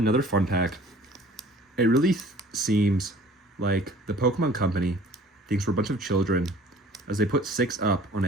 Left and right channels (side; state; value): both; normal; correlation 0.50